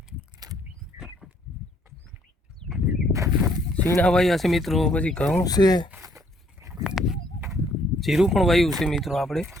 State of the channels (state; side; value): normal; both; correlation 0.66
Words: શીણા વાયા છે મિત્રો, પછી ઘઉં છે, જીરું પણ વાયું છે મિત્રો। આપણે